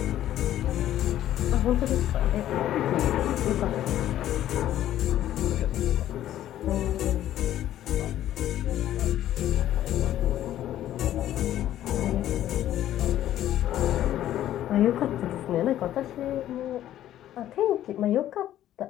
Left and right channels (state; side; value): quieter; right; 12.4 dB